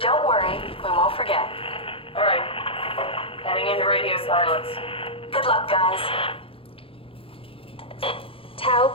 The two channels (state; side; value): late; right; 0.27 ms